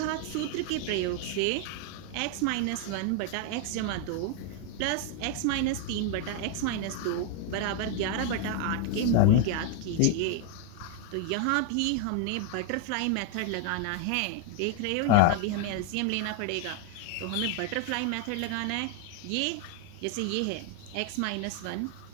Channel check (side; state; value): both; different; correlation 0.00